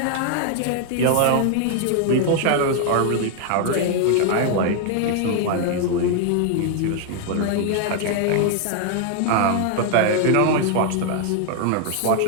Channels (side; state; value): both; different; correlation 0.00